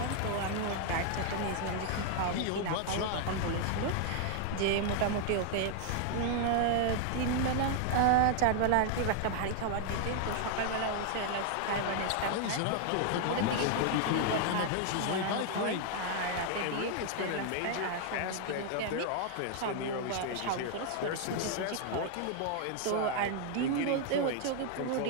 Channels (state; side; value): different; both; correlation 0.00